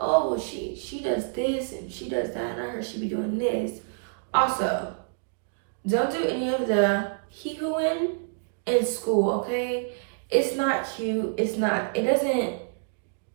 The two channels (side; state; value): left; silent; digital silence